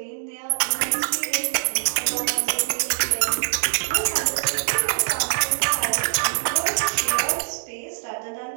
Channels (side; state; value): left; silent; digital silence